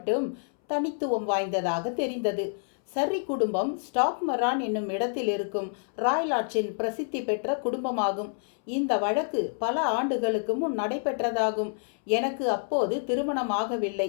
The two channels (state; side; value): silent; right; 59 dB below the other